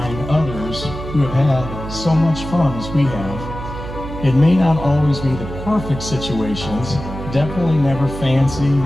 others who have had so much fun as we have. It may not always be the perfect situations, definitely never fancy,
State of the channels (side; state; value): right; noise; hum, 9 dB below the sound